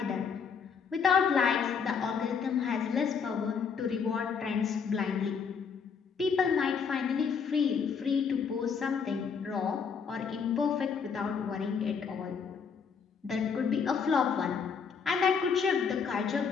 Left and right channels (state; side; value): quieter; right; 6.2 dB